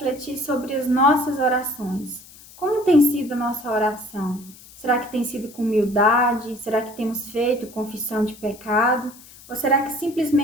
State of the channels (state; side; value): noise; left; hiss, 21 dB below the sound